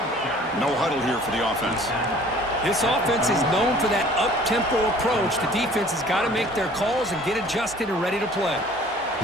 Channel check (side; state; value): both; normal; correlation 0.51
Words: No huddle here for the offense. This offense is known for that up-tempo approach. The defense has got to make their calls and get adjusted and ready to play.